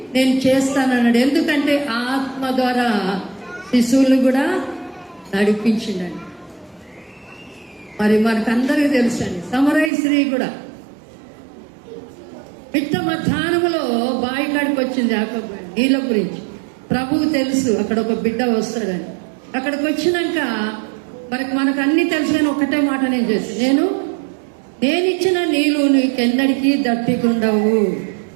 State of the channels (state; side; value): drops out; left; at 9.9 s